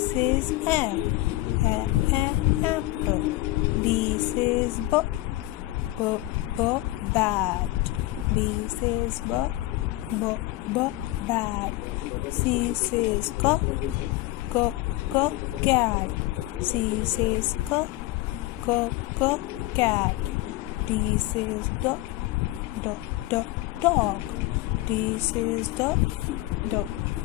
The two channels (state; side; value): quieter; right; 17.9 dB